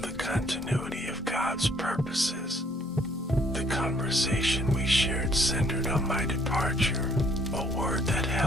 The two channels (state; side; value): normal; both; correlation 0.63